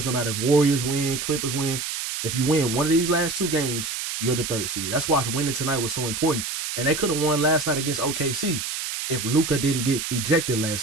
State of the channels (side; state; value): right; noise; hiss, 4 dB below the sound